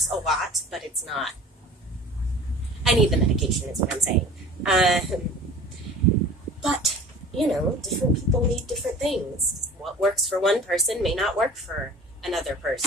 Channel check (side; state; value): both; normal; correlation 0.42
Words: a lot, but it's not. I need the medication is what I'm saying. But, different people need different things. What works for one person may not work for another